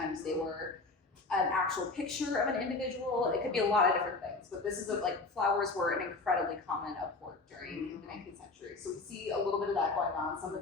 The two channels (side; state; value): right; quieter; 3.6 dB